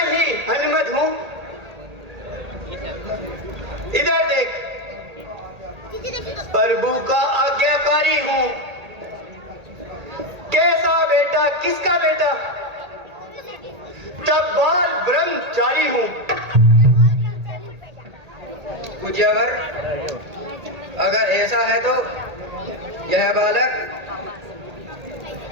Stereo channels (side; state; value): left; late; 1.8 ms